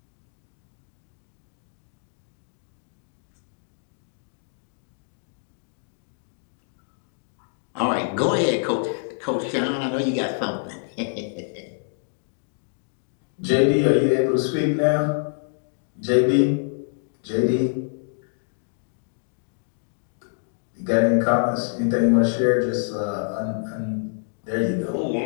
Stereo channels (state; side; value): silent; right; digital silence